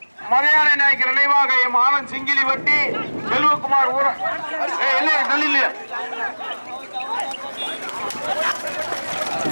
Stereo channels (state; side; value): inverted; both; correlation -1.00